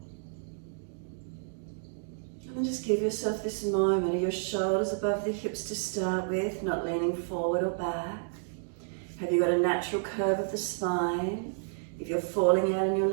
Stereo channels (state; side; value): silent; left; digital silence